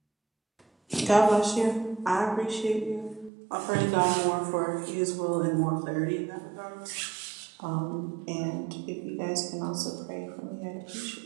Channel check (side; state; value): left; drops out; at 3.3 s